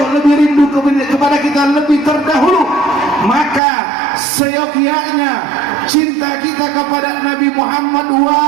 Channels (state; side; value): drops out; left; at 3.6 s